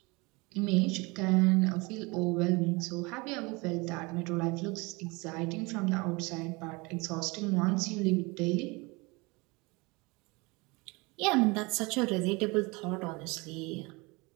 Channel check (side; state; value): left; quieter; 25.9 dB